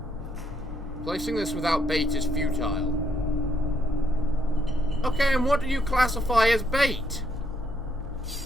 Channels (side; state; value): both; normal; correlation 0.74